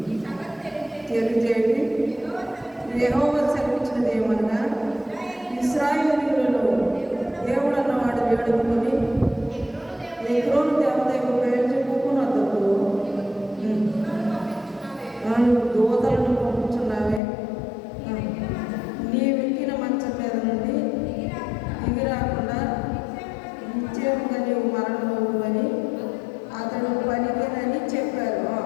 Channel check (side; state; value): right; drops out; at 17.2 s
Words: తెలియజేయండి. యెహోవా సెలవిచ్చినది ఏమనగా, ఇశ్రాయేలీయులలో దేవుడు అన్నవాడు వేడుకొని ఎగ్రోను దేవత యొక్క పేరు చెప్పుకున్నందుకు దూతలను పంపుతున్నావే, నీవెక్కిన మంచం మీద నుండి దిగిరాకుండా నిశ్చయముగా నీవు మరణమవు అని అతడు పలికినని చెప్పారు.